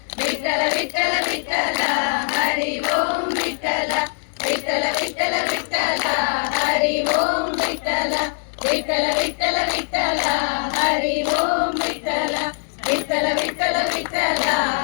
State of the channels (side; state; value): right; silent; digital silence